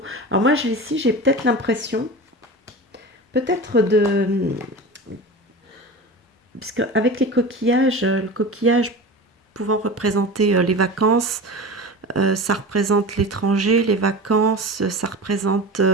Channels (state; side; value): normal; both; correlation 0.31